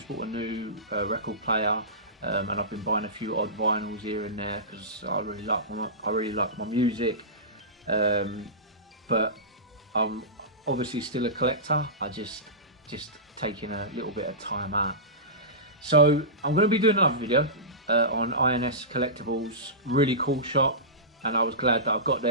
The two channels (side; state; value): both; normal; correlation -0.19